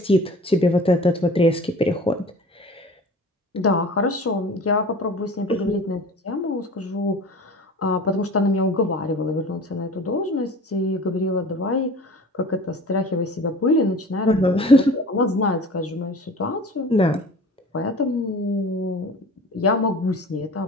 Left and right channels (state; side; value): normal; both; correlation 0.41